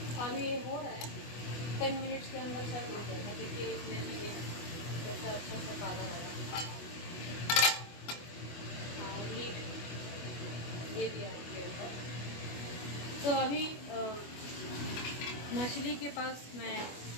अभी ये हो रहा है, 10 मिनट्स के अंदर शायद हो जाएगा। देखिए इसमें भी ये कैसा अच्छा सा काला रहा। हाँ, लीड दे दिया उसके ऊपर। तो अभी मछली के पास मैं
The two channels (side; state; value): right; late; 25 ms